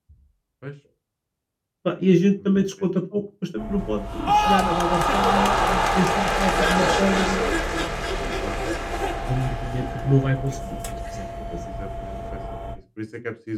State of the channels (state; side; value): identical; both; correlation 1.00